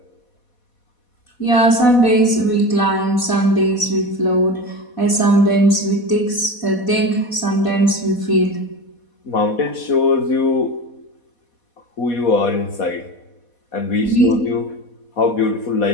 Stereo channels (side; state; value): right; late; 4.1 ms